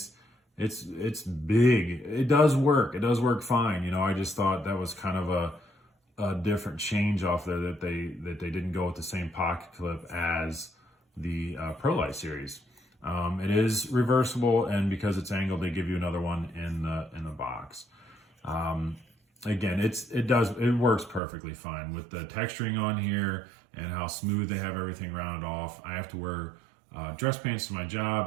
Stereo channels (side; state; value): left; drops out; at 21.2 s